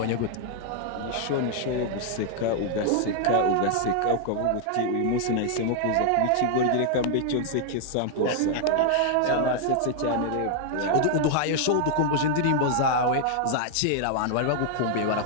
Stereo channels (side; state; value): both; different; correlation 0.00